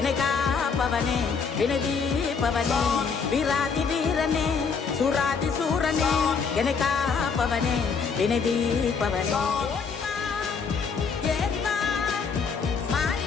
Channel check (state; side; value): quieter; right; 5.6 dB